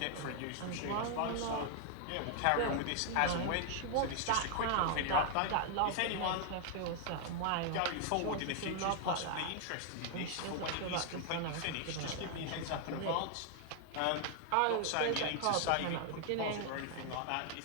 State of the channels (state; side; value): different; both; correlation 0.00